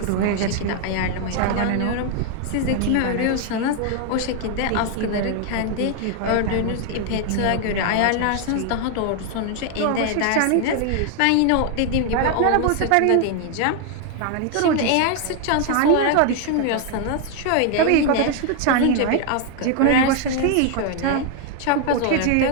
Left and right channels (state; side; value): different; both; correlation 0.00